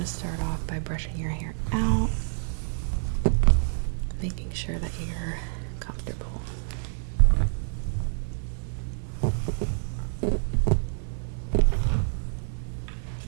to start off by brushing your hair out, making sure that you're comfortable.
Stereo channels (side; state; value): left; silent; 60 dB below the other